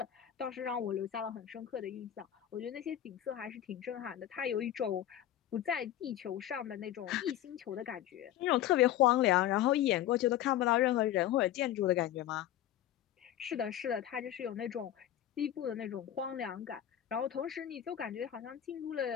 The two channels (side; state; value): right; quieter; 12.0 dB